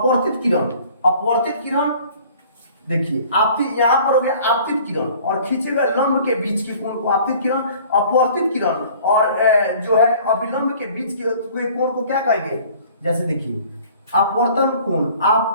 किरण, अपवर्तित किरण देखिए आपतित, यहां पर हो गया आपतित किरण और खींचे गए लंब के बीच के कोण को आपतित किरण, अपवर्तित किरण और जो है अभिलंब के बीच के कोण को क्या कहेंगे, जैसे देखिए अपवर्तन कोण,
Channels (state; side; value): inverted; both; correlation -0.51